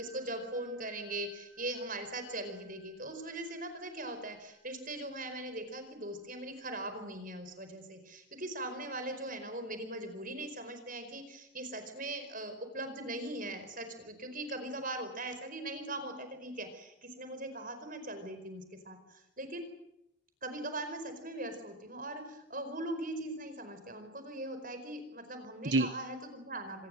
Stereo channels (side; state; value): both; normal; correlation 0.09